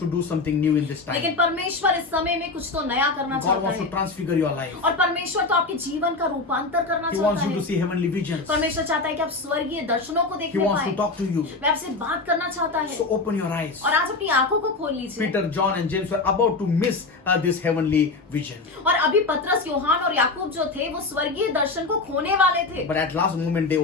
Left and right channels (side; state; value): right; quieter; 3.6 dB